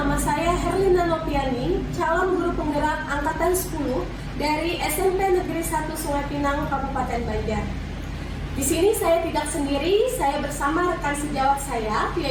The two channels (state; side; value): identical; both; correlation 1.00